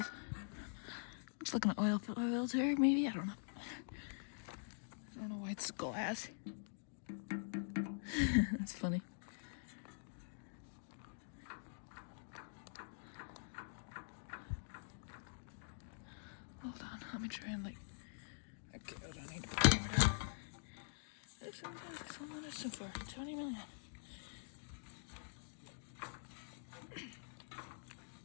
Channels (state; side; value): silent; right; digital silence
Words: Looks like an oil filter, maybe? I don't know. I don't know why it's glass. That's funny. Hold on, let me try and like... Okay, hold on, I need to put the camera down. Sometimes so far, 20 million.